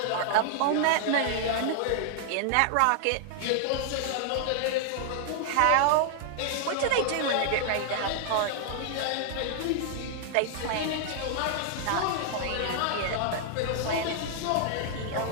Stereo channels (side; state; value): both; different; correlation -0.01